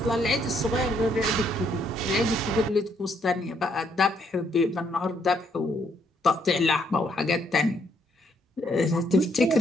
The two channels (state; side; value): normal; both; correlation 0.71